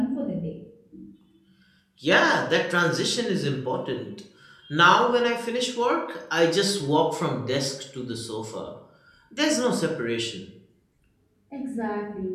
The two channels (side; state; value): both; identical; correlation 1.00